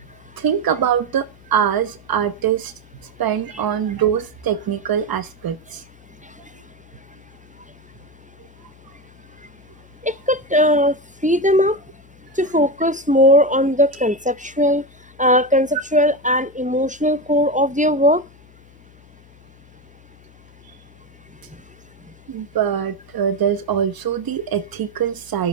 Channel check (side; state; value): left; noise; hum, 26 dB below the sound